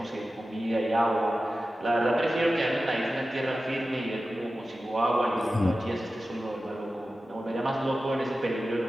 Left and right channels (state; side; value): normal; both; correlation 0.94